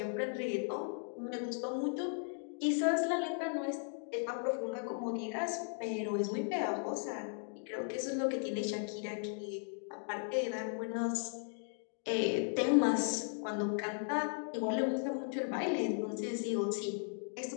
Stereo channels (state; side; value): silent; right; 53 dB below the other